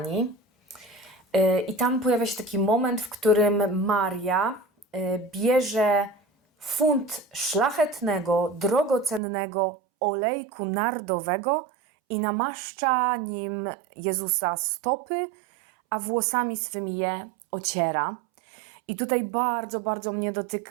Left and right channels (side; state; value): left; drops out; at 9.2 s